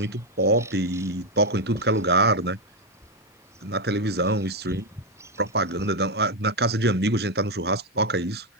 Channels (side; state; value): both; normal; correlation 0.05